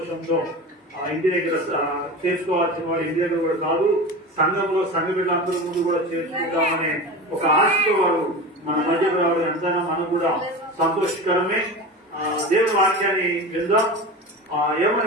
ఇంటి దగ్గర చేసుకోవాల్సిన వాడు ఇంటి దగ్గర కూడా కాదు, సంఘంలో సంఘ బిడ్డలందరి ముందు కూడా చేసుకుంటామనే ఒక ఆశతో వాడు మన మధ్యకు రావడం ఎంతైనా మనకు కూడా సంతోషకరమే. దేవుని వాక్యాన్ని విందాం.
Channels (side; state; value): both; normal; correlation 0.29